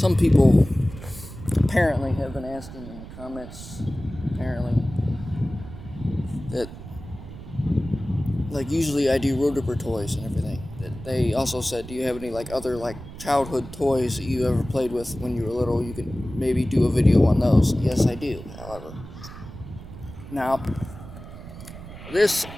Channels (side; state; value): right; noise; rumble, 13 dB below the sound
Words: people apparently have been asking in the comments, apparently, that like usually I do road ripper toys and everything. They also said, do you have any like other like childhood toys that you ever played with when you were little? You could maybe do a video on those. Yes, I do, however. Now, the